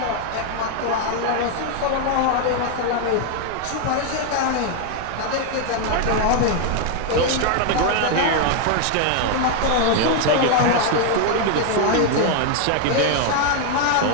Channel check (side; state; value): both; different; correlation 0.00